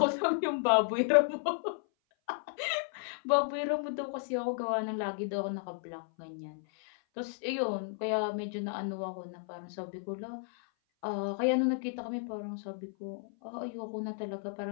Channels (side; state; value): right; silent; 56 dB below the other